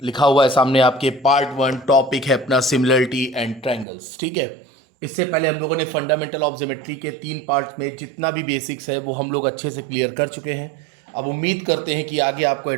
लिखा हुआ है सामने आपके, पार्ट 1। टॉपिक है अपना सिमिलरिटी एंड ट्रायंगल्स। ठीक है, इससे पहले हम लोगों ने फंडामेंटल ऑफ ज्योमेट्री के 3 पार्ट में जितना भी बेसिक्स है वो हम लोग अच्छे से क्लियर कर चुके हैं। अब उम्मीद करते हैं कि आगे आपको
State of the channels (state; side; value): drops out; left; at 3.9 s